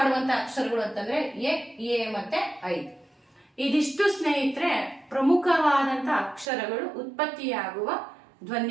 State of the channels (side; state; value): left; drops out; at 6.5 s